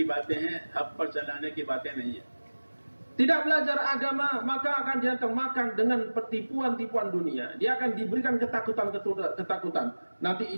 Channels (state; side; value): inverted; both; correlation -1.00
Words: बातें हैं, हक पर चलाने की बातें नहीं है. Tidak belajar agama, maka akan dia termakan dengan tipuan-tipuan dunia. Dia akan diberikan ketakutan. Nanti